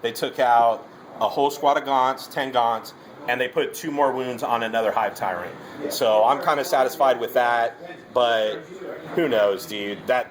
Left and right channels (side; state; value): both; identical; correlation 1.00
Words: took out a whole squad of Gaunts, 10 Gaunts. And they put 2 more wounds on another Hive Tyrant. So I'm kind of satisfied with that. But who knows, dude?